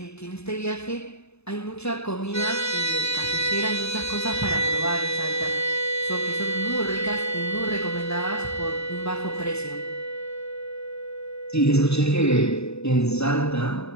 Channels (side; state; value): right; late; 0.80 ms